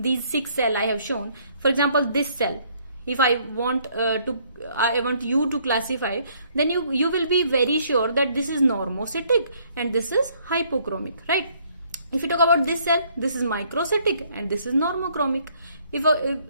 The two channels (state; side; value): inverted; both; correlation -0.65